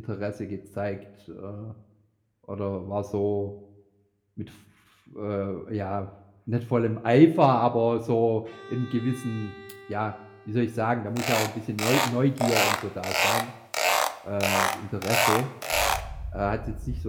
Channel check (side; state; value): both; identical; correlation 1.00